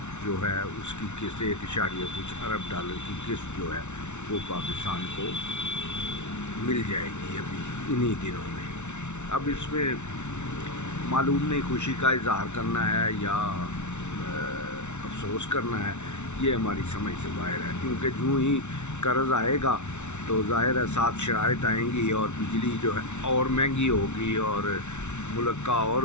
जो है उसकी किस्त 1 कुछ $1 की किस्त जो है वो पाकिस्तान को मिल जाएगी अभी इन्हीं दिनों में। अब इसमें मालूम नहीं खुशी का इजहार करना है या अफसोस करना है, ये हमारी समझ से बाहर है, क्योंकि जो ही कर्ज़ आएगा तो ज़ाहिर है साथ शराइत आएंगी और बिजली जो है और महंगी होगी और मुल्क का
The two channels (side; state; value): right; late; 0.82 ms